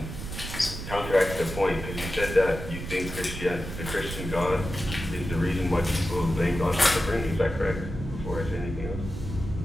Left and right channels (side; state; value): right; noise; rumble, 8 dB below the sound